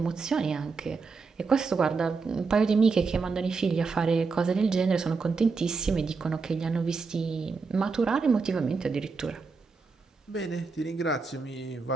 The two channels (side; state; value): left; quieter; 4.6 dB